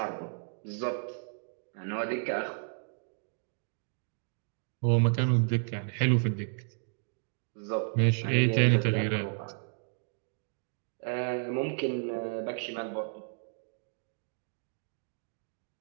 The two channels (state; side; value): silent; left; digital silence